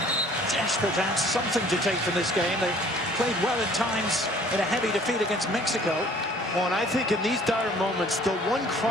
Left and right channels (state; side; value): normal; both; correlation 0.54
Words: desperate to have something to take from this game. They played well at times in a heavy defeat against Mexico. Well, and I think in these dire moments, the one